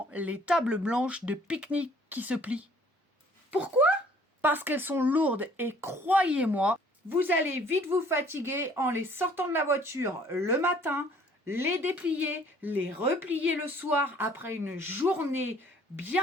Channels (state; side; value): normal; both; correlation 0.57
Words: les tables blanches de pique-nique qui se plient. Pourquoi? Parce qu'elles sont lourdes et croyez-moi, vous allez vite vous fatiguer en les sortant de la voiture le matin, les déplier, les replier le soir après une journée